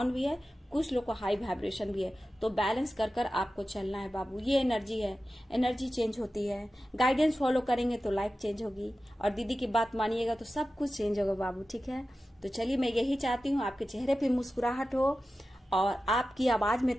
भी है, कुछ लोग को हाई वाइब्रेशन भी है। तो बैलेंस कर कर आपको चलना है बाबू, ये एनर्जी है, एनर्जी चेंज होती है। गाइडेंस फॉलो करेंगे तो लाइफ चेंज होगी, और दीदी की बात मानिएगा तो सब कुछ चेंज होगा बाबू। ठीक है, तो चलिए मैं यही चाहती हूँ आपके चेहरे पे मुस्कुराहट हो, और आपकी आवाज में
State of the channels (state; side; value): normal; both; correlation 0.94